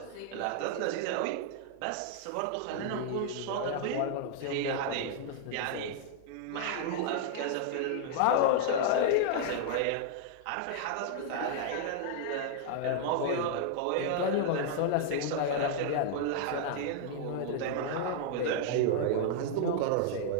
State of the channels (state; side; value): different; both; correlation -0.01